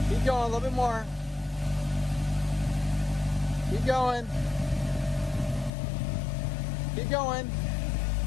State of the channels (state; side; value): drops out; right; at 5.7 s